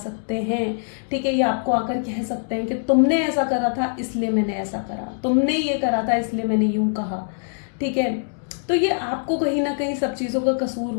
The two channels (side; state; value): right; silent; 63 dB below the other